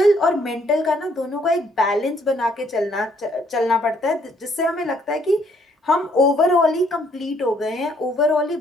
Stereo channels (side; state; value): both; normal; correlation 0.67